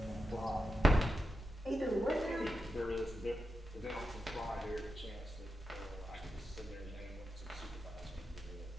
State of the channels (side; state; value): both; normal; correlation 0.88